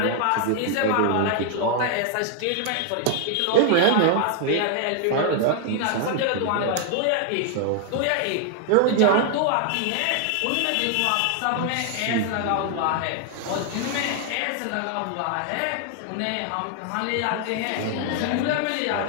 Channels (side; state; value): both; different; correlation 0.00